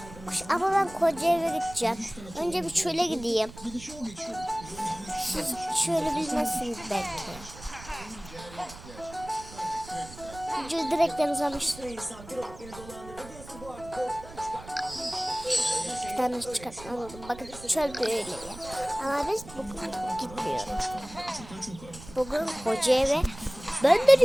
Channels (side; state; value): right; noise; rumble, 16 dB below the sound